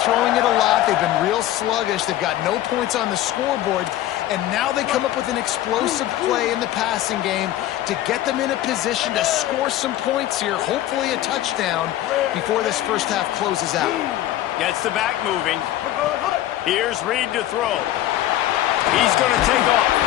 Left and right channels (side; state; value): right; quieter; 13.7 dB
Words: throwing it a lot. They've been real sluggish. They've got no points on the scoreboard. And now they come up with an explosive play in the passing game to get them in a position to score some points here, hopefully a touchdown, before this first half closes out. Gets the back moving. Here's Reed to throw. He's going to take off.